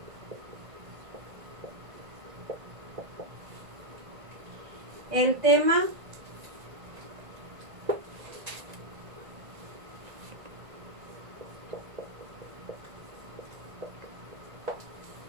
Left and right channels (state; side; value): late; left; 1.9 ms